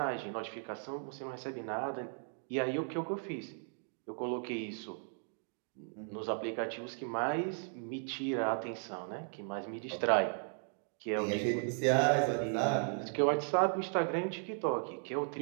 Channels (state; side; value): silent; left; 54 dB below the other